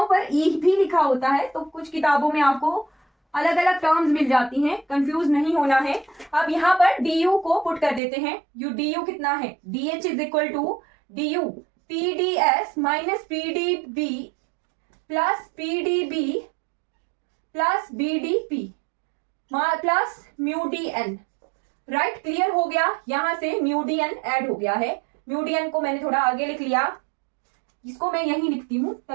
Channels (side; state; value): left; drops out; at 8.0 s